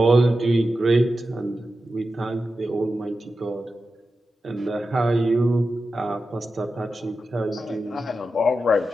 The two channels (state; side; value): normal; both; correlation 0.91